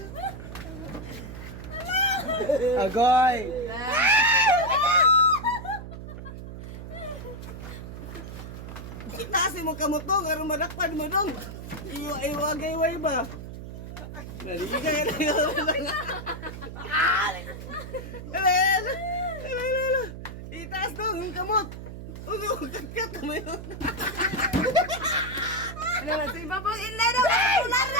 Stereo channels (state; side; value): noise; right; hum, 10 dB below the sound